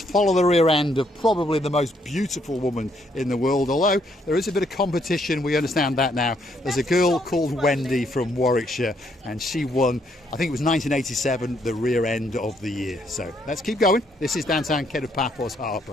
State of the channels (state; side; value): normal; both; correlation 0.72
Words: the rear end of probably the most beautiful woman in the world, although there is a bit of competition, we understand that now. There's a girl called Wendy from Warwickshire and she won, I think it was 1987, the rear end of the year. So let's keep going. This is downtown Kato Paphos